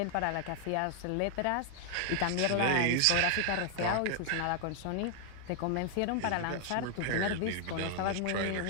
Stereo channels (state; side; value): different; both; correlation 0.00